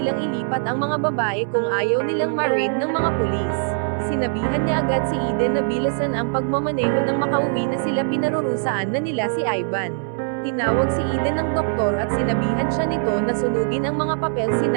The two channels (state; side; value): silent; left; 64 dB below the other